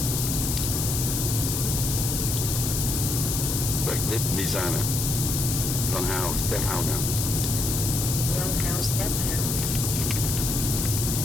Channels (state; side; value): noise; left; hiss, 1 dB below the sound